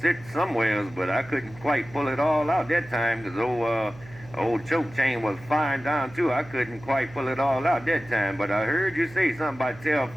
somewhere else, but I couldn't quite pull it all out that time because old Choke Chain was firing down too. I couldn't quite pull it all out that time, but I heard you say something about tell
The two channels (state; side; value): noise; right; hum, 20 dB below the sound